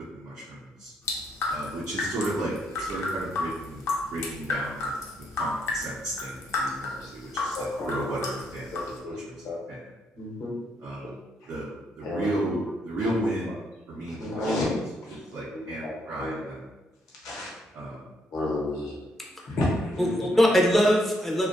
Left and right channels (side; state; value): both; normal; correlation 0.74